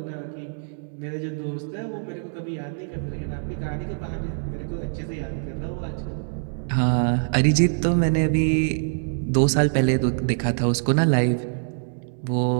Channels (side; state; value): left; silent; 62 dB below the other